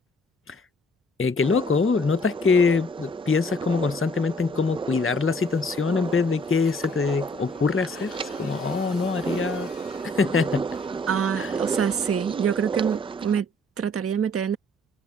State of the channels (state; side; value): normal; both; correlation 0.60